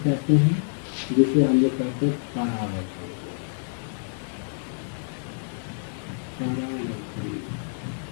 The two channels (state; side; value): silent; right; digital silence